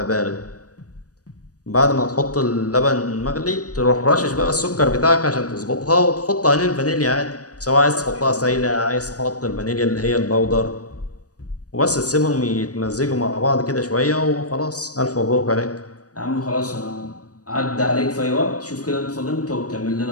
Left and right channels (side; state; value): right; late; 0.67 ms